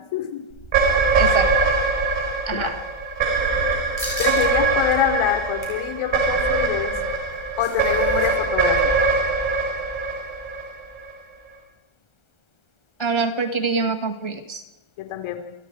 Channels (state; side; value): late; right; 1.3 ms